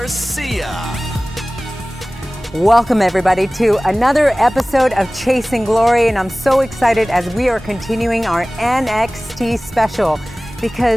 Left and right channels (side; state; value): both; normal; correlation 0.98